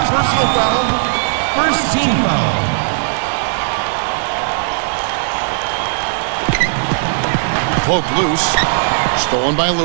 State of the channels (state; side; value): silent; left; 69 dB below the other